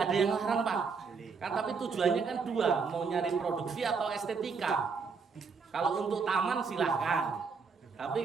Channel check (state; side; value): quieter; left; 5.2 dB